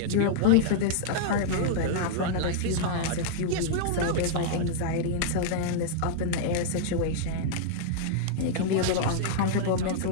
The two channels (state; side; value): different; both; correlation -0.01